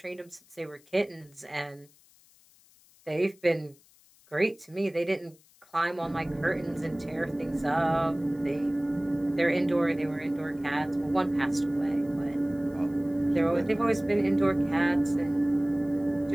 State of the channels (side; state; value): left; noise; hiss, 29 dB below the sound